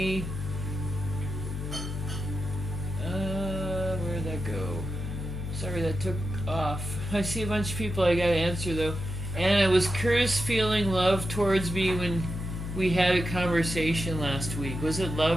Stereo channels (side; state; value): left; noise; hum, 6 dB below the sound